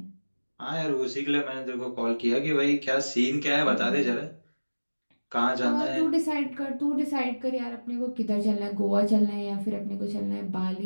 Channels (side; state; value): both; inverted; correlation -1.00